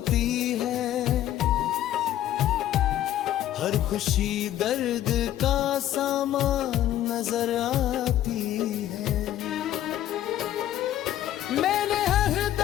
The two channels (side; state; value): right; quieter; 12.4 dB